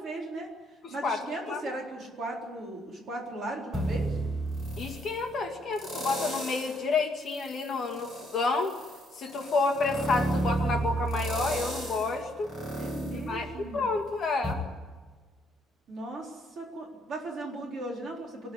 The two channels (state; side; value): normal; both; correlation 0.70